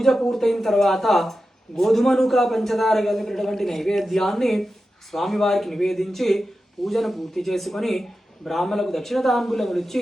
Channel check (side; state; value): both; normal; correlation 0.92